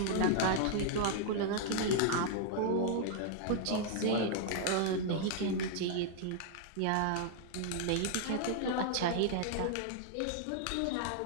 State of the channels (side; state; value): both; different; correlation -0.01